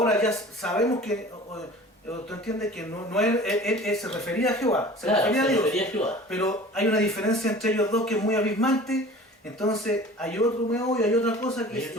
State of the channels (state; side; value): normal; both; correlation 0.43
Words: ya sabemos que, tú entiendes que no él se refería a Jehová, se Claro, refería a se Dios, refería a Jehová. pero hay una diferencia entre ellos dos que es muy abismante, entonces hay otro meollo, hay otra cosa que Hay